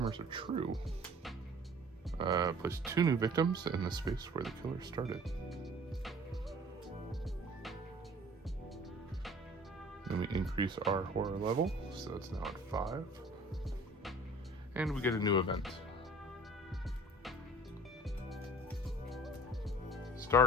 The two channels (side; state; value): both; normal; correlation 0.48